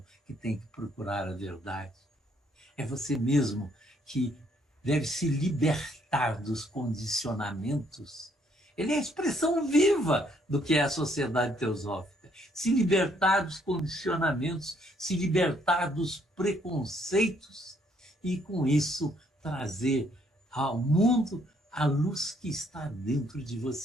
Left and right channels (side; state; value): both; normal; correlation 0.68